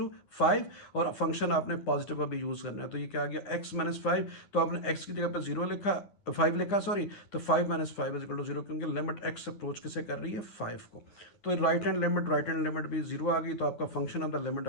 5, और फंक्शन आपने पॉजिटिव अभी यूज करना है। तो ये क्या आ गया, एक्स -5, तो आपने एक्स की जगह पर 0 लिखा, 5 लिखा सॉरी, तो 5 - 5 इज इक्वल टू 0, क्योंकि लिमिट एक्स अप्रोच किसे कर रही है, 5 को। तो राइट हैंड लिमिट भी 0 आ गई, तो आपका फंक्शन ऑफ द लिमिट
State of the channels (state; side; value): late; right; 9.7 ms